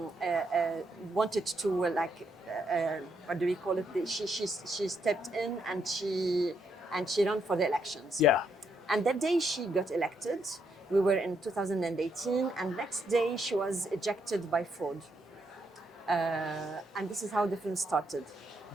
wanted to what do we call it? She stepped in and she ran for the elections. Yeah. And that day she got elected. We were in 2018, and next day she was ejected by fraud. And this is how the film started.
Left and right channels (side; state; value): both; normal; correlation 0.76